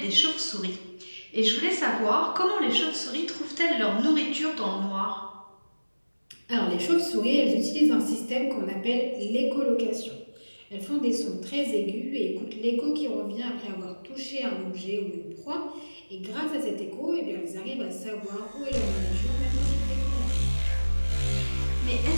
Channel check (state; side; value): inverted; both; correlation -1.00